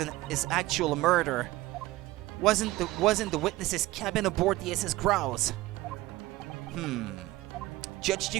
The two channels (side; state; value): left; quieter; 18.3 dB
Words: is actual murder. Wasn't the witness's cabin aboard the SS Grouse? Judge